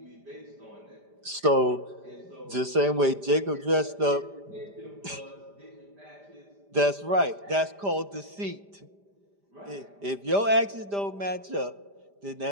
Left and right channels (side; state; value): left; late; 5.0 ms